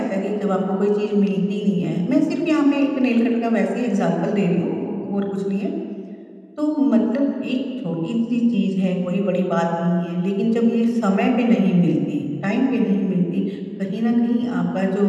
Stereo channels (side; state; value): both; identical; correlation 1.00